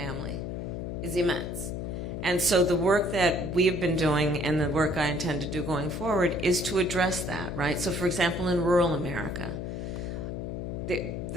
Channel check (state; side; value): noise; left; hum, 5 dB below the sound